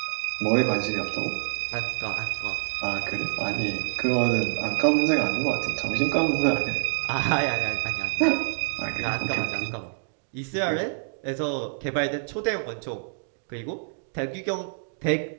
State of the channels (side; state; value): left; silent; digital silence